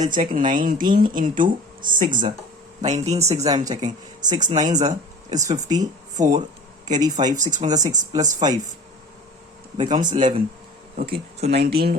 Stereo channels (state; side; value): normal; both; correlation 0.40